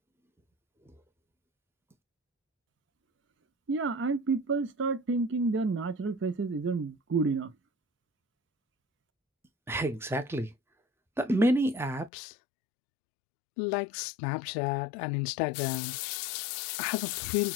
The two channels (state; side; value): drops out; right; at 12.1 s